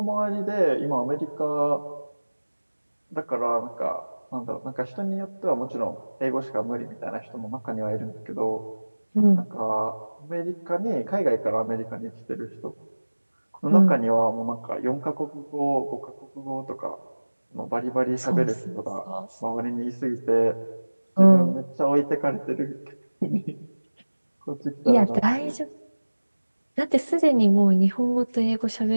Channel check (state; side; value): inverted; both; correlation -1.00